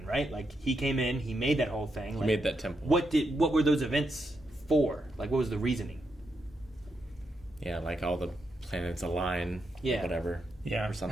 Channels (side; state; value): both; normal; correlation 0.83